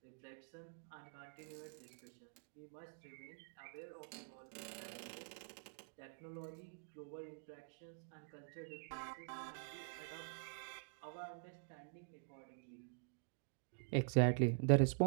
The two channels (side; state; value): left; silent; digital silence